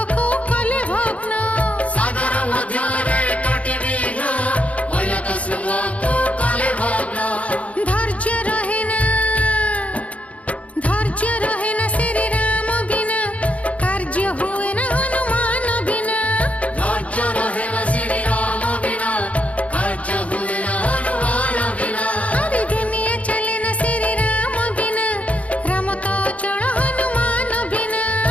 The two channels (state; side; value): late; right; 0.066 ms